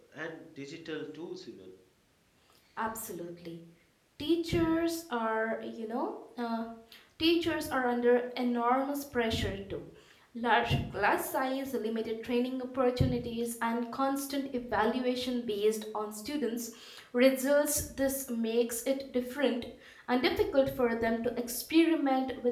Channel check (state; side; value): identical; both; correlation 1.00